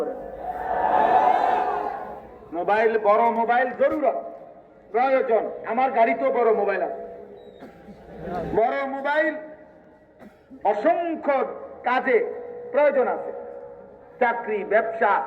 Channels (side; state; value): both; identical; correlation 1.00